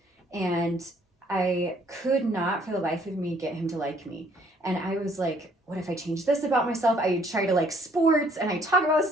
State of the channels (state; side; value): normal; both; correlation 0.63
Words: and I could not for the life of me get him to like me. And I was like, what if I change this about myself? I try to like sports, and I talk about